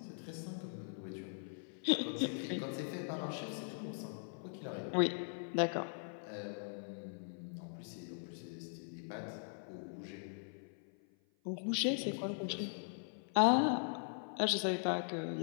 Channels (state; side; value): silent; right; 51 dB below the other